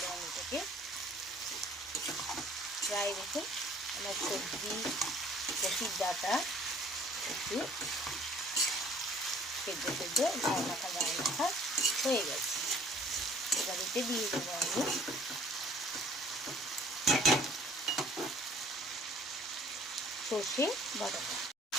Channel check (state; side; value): normal; both; correlation 0.54